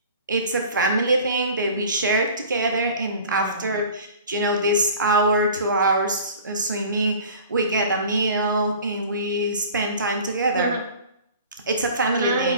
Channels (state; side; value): inverted; both; correlation -0.43